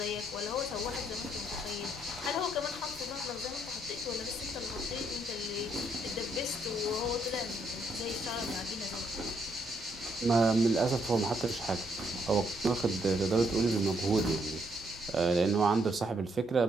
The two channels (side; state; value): both; normal; correlation 0.73